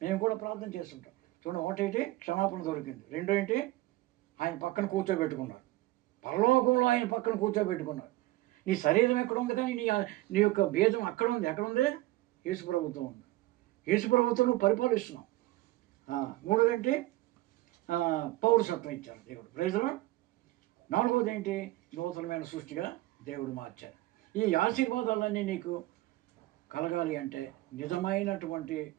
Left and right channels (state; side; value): quieter; left; 18.1 dB